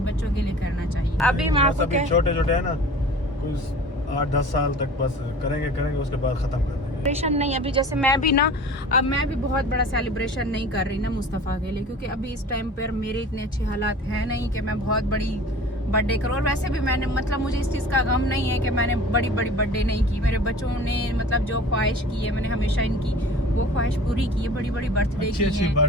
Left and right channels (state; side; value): normal; both; correlation 0.42